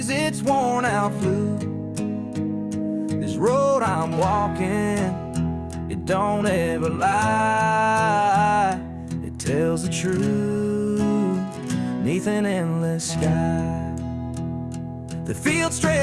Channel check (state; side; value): identical; both; correlation 1.00